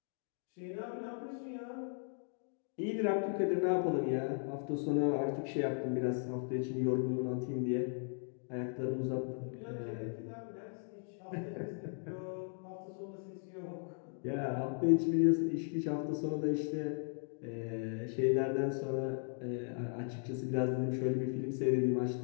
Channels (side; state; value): right; silent; 53 dB below the other